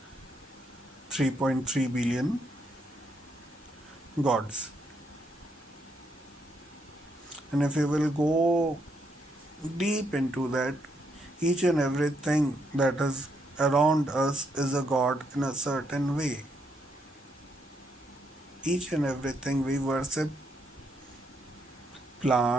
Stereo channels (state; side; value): normal; both; correlation 0.76